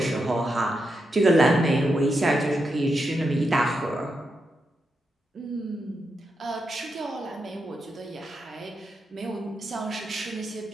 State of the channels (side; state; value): both; normal; correlation 0.85